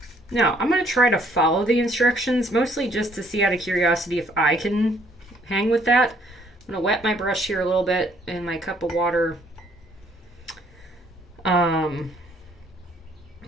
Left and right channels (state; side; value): normal; both; correlation 0.64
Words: Now, I'm going to try to follow the instructions, mostly just to see out of curiosity if I can hang with that. I'm going to wet my brush here a little bit in my cup of water. So